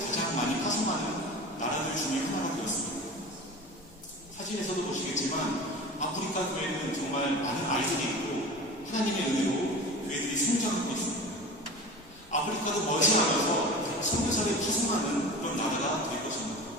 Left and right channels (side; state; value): both; normal; correlation 0.34